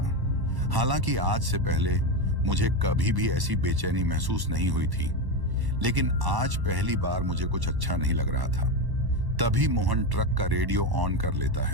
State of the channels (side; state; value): left; late; 1.1 ms